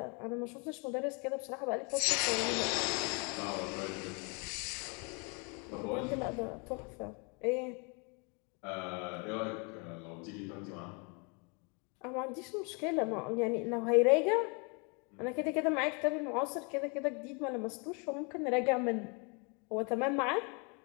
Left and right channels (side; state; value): right; quieter; 33.5 dB